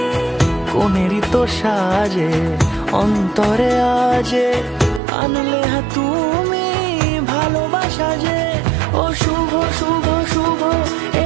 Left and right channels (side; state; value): left; drops out; at 5.0 s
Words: কোনেরই তো সাজে অন্তরে আজে, আনলে তুমি ভালোবাসা যে। ও শুভ শুভ শুভ এ